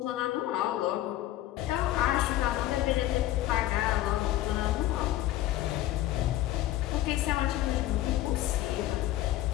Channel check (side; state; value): right; quieter; 14.7 dB